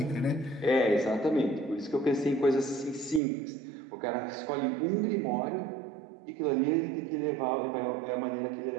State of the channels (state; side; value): drops out; left; at 3.2 s